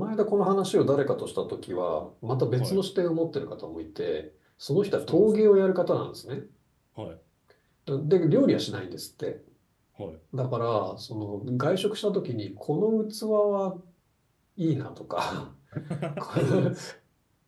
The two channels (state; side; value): identical; both; correlation 1.00